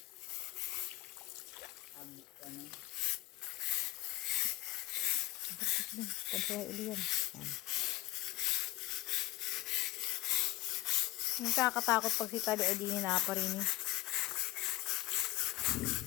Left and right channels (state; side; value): quieter; right; 19.2 dB